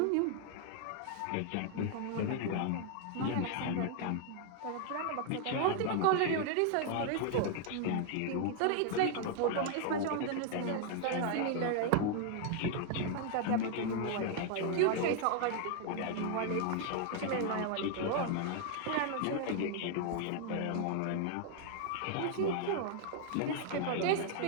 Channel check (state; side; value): different; both; correlation 0.00